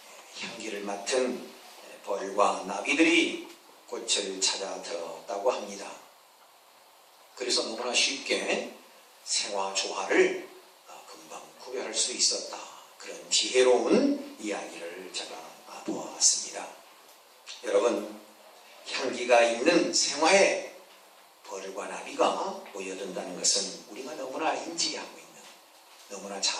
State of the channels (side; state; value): both; identical; correlation 1.00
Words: 향기를 맡은 벌과 나비들이 꽃을 찾아 들었다고 합니다. 그래서 너무나 쉽게 생화 조화를 금방 구별할 수 있었다. 그런 지혜로운 이야기를 제가 보았습니다. 여러분, 향기가 있는 생화에 벌과 나비가 모여든다는 것은 우리가 너무나 인지하고 있는, 너무나